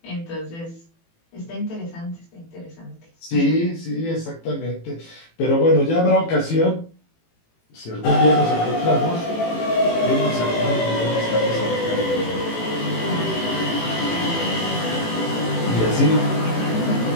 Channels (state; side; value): late; right; 18 ms